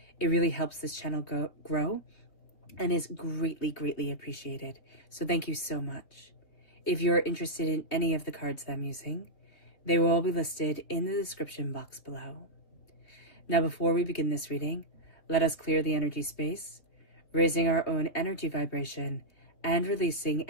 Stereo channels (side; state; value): right; late; 3.4 ms